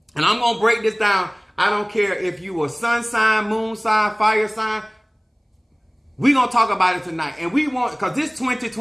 And I'm going to break this down. I don't care if you a sun sign, moon sign, fire sign. We're going to talk about it tonight. And we want, because this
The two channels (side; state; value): both; identical; correlation 1.00